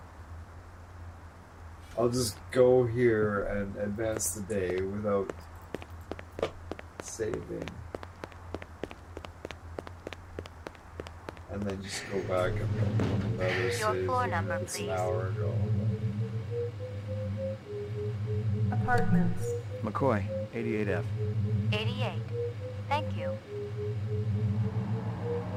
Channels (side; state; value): both; identical; correlation 1.00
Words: I'll just go here and advance the day without saving. And then just go back and another save. Your floor number, It's please. an hour ago. Apartments. McCoy, 88F. 88. Thank you.